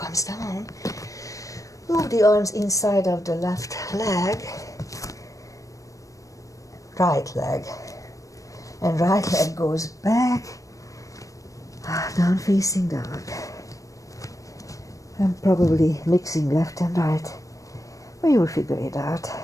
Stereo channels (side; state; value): right; late; 0.16 ms